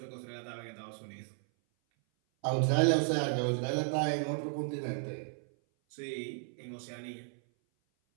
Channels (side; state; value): left; silent; 55 dB below the other